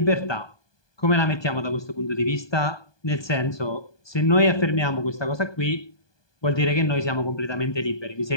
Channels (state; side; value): late; right; 1.2 ms